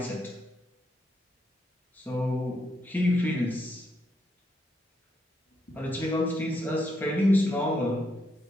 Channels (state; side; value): normal; both; correlation 0.79